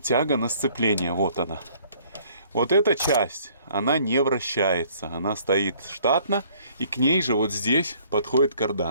тяга на сцепление. Вот она. Вот эта часть, она не вращается. Она стоит штатно. И к ней же вот здесь подходит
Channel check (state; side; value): inverted; both; correlation -0.59